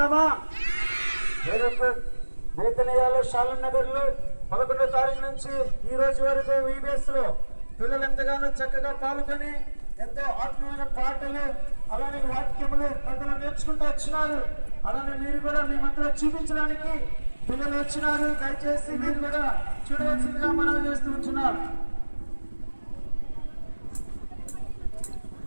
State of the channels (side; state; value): both; inverted; correlation -1.00